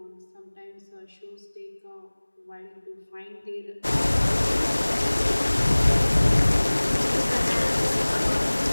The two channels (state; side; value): inverted; both; correlation -1.00